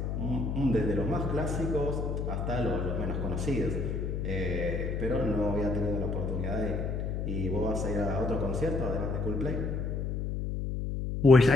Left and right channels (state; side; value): noise; left; hum, 2 dB below the sound